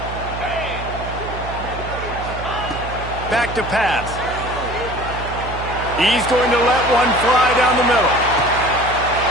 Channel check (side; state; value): right; noise; hum, 9 dB below the sound